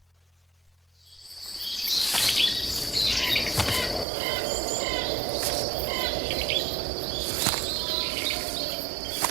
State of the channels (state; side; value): drops out; left; at 4.0 s